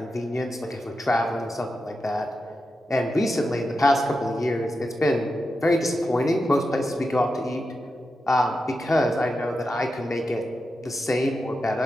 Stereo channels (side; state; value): both; normal; correlation 0.89